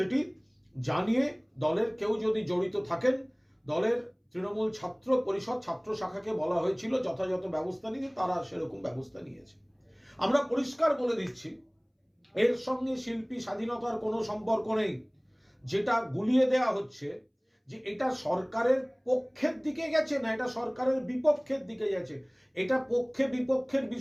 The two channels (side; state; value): both; identical; correlation 1.00